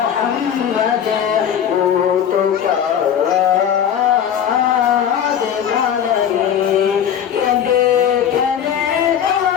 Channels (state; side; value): quieter; right; 9.0 dB